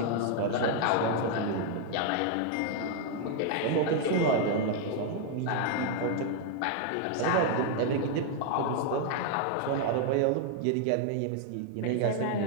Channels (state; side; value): different; both; correlation 0.00